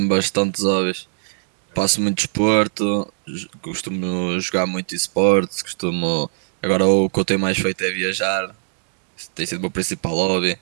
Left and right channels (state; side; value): silent; left; digital silence